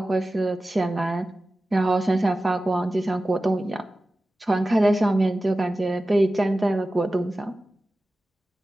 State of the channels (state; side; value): normal; both; correlation 0.95